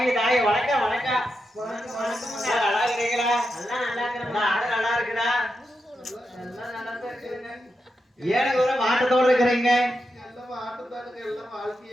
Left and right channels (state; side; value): normal; both; correlation 0.87